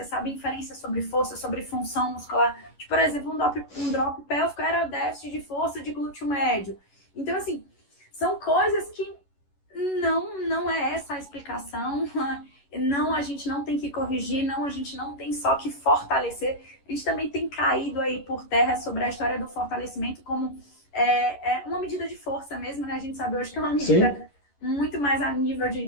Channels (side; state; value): right; late; 11 ms